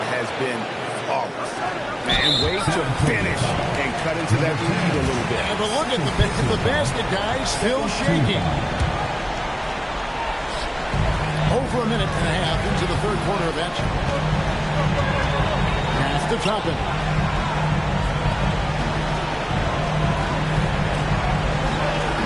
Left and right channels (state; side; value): identical; both; correlation 1.00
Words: has been flawless. And way to finish and cut into that lead a little bit. Yeah, but look at the basket, guys, still shaking. Over a minute and a half into the third quarter of action. Pass to Toppin.